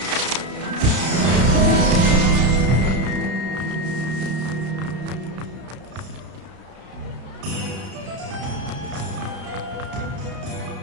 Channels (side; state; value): left; late; 32 ms